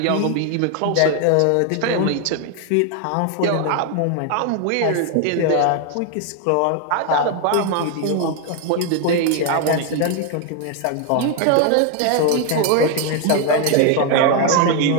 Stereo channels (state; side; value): different; both; correlation 0.01